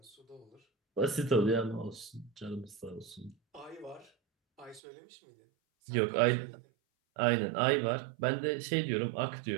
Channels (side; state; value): left; drops out; at 4.8 s